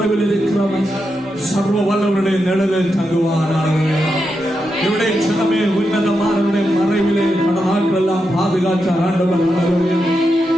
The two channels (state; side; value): normal; both; correlation 0.86